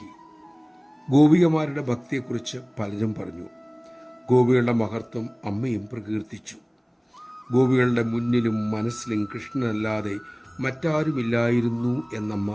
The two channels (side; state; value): both; identical; correlation 1.00